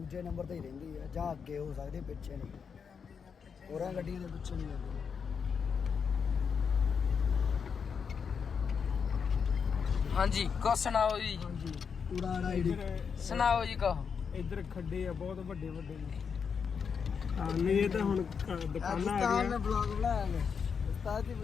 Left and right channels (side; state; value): right; quieter; 6.3 dB